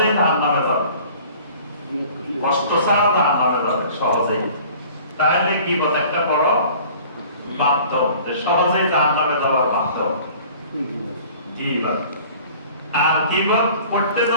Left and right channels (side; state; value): both; inverted; correlation -0.48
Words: জাহান্নামে যাবে, কষ্ট ছাড়া জাহান্নামে যাবে সহজেই, তাহলে গীবত একটা বড় মাধ্যম, সহজেই জাহান্নামে যাওয়ার মাধ্যম গীবত। আর গীবত করতে